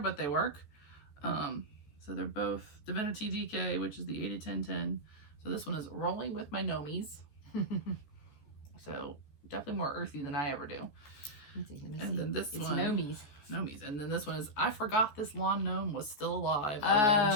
they work. So they're both Divinity DK, which is the 80-10-10. So this one is Rolling with My Nomies. So definitely more earthy than I ever do. And then this one, Nomies. And then this one is, I forgot this lawn gnome was still alive.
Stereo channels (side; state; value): right; late; 14 ms